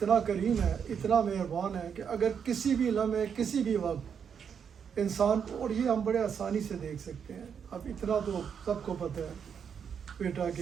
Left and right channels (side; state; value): left; quieter; 7.3 dB